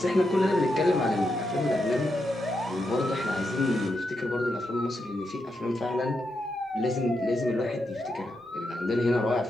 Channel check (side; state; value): both; normal; correlation 0.84